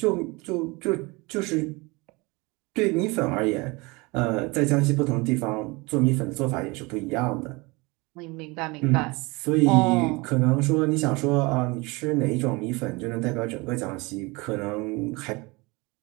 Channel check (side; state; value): left; quieter; 25.4 dB